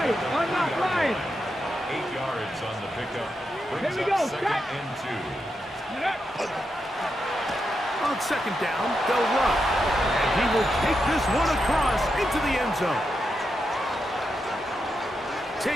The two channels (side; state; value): both; normal; correlation 0.85